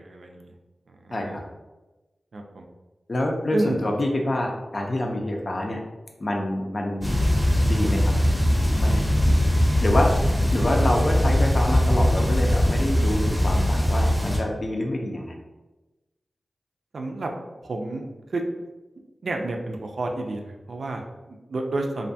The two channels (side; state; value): both; normal; correlation 0.96